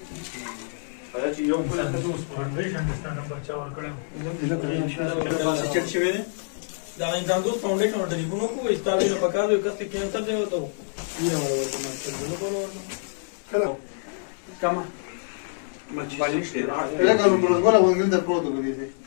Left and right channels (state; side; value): silent; right; 61 dB below the other